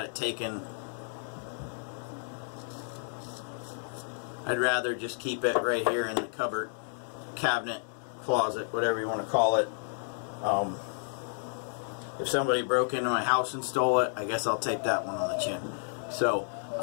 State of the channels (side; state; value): right; silent; digital silence